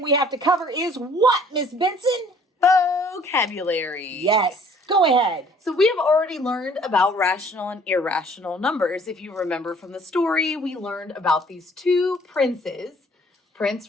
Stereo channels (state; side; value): normal; both; correlation 0.56